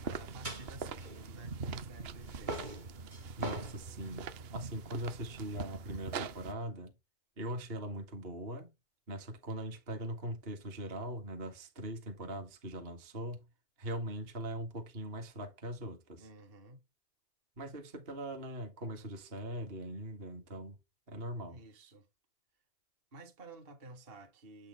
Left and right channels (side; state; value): left; late; 2.2 ms